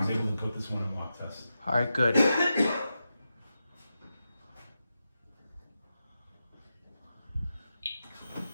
able to put this one in walk test. All right, good. There we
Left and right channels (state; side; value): inverted; both; correlation -0.89